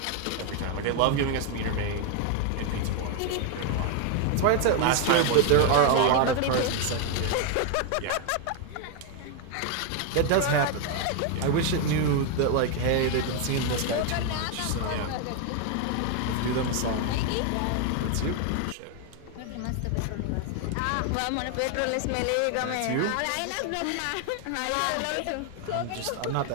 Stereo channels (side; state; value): both; different; correlation 0.01